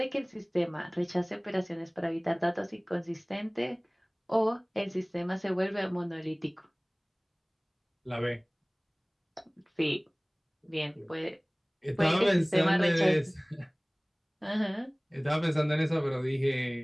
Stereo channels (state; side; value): identical; both; correlation 1.00